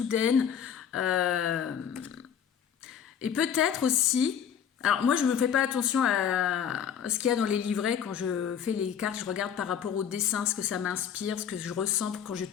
Et peut-être aussi... Alors moi, je ne me fais pas attention à ce qu'il y a dans les livrets. Quand je fais les cartes, je regarde par rapport au dessin, ce que ça m'inspire, ce que je ressens quand je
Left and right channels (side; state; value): right; quieter; 8.3 dB